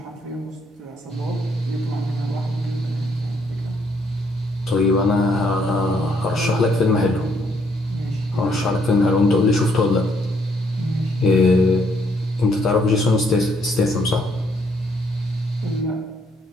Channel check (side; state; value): both; normal; correlation 0.70